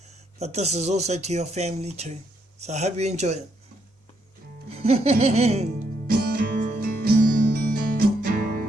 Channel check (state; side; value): normal; both; correlation 0.76